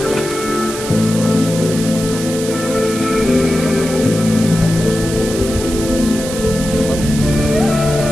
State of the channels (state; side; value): noise; right; hiss, 9 dB below the sound